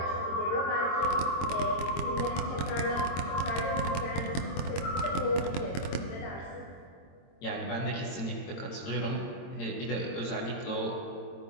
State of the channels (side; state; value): right; late; 22 ms